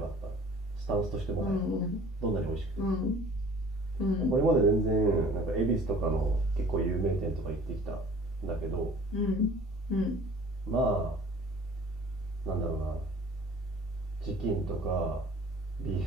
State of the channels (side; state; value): both; normal; correlation 0.49